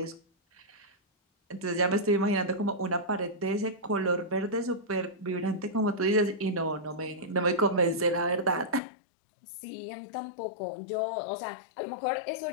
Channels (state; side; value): drops out; right; at 8.8 s